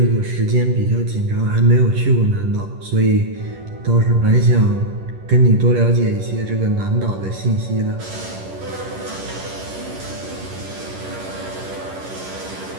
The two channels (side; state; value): left; late; 11 ms